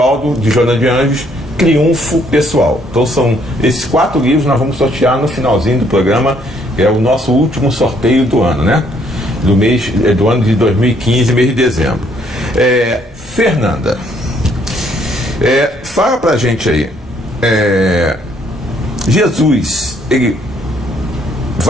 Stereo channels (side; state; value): both; normal; correlation 0.67